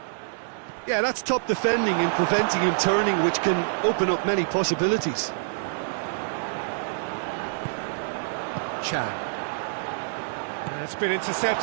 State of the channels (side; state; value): left; silent; digital silence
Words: Yeah, that's top defending and preventing him turning, which can open up many possibilities. Chan. It's been